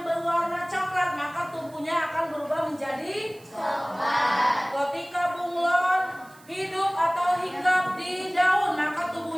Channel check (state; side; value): noise; right; hiss, 26 dB below the sound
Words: berwarna coklat, maka tubuhnya akan berubah menjadi coklat. Ketika bunglon hidup atau hinggap di daun, maka